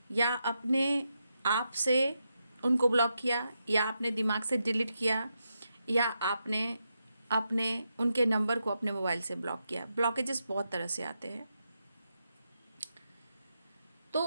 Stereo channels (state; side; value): inverted; both; correlation -0.85